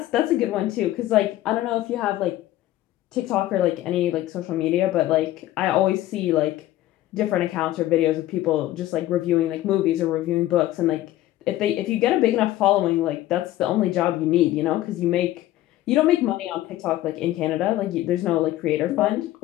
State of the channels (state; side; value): quieter; right; 14.9 dB